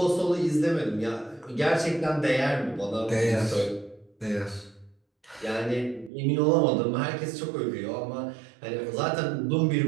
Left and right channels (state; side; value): drops out; left; at 6.1 s